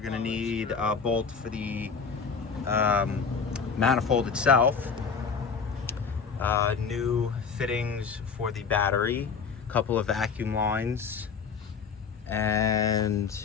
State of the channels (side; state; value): right; quieter; 5.8 dB